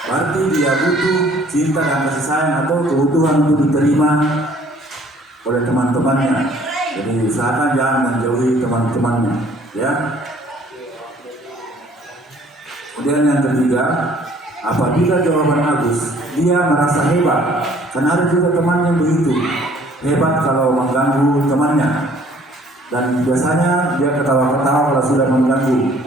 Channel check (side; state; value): both; normal; correlation 0.57